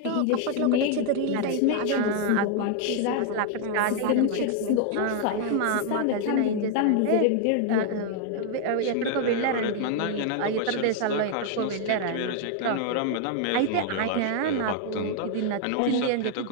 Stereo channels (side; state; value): both; different; correlation 0.00